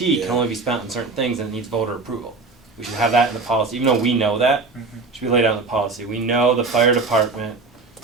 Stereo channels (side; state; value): left; quieter; 4.0 dB